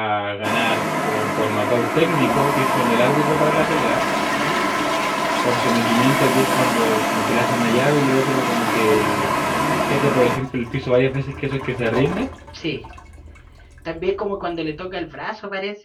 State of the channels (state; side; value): identical; both; correlation 1.00